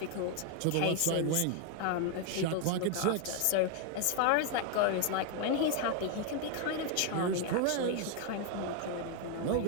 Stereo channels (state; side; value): different; both; correlation 0.01